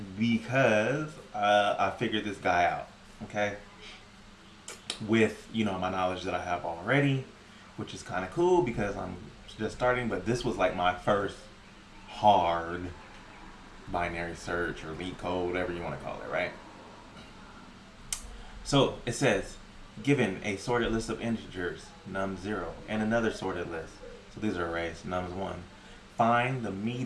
because I figured this guy out. Okay, with my knowledge that I have already, which is kind of cool because I'm just starting. But this was like my first hard binary search or Leetcode, whatever you want to call it, right? So it says, given a sorted list of integers, num0, and another sorted list, so these are arrays, nums1, find the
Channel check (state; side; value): identical; both; correlation 1.00